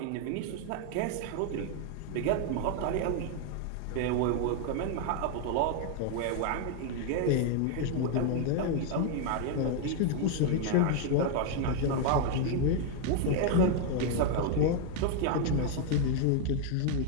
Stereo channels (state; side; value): different; both; correlation 0.00